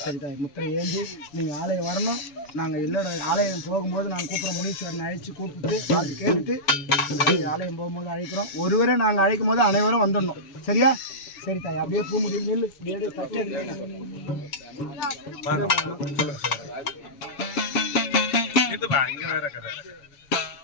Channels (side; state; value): right; late; 7.0 ms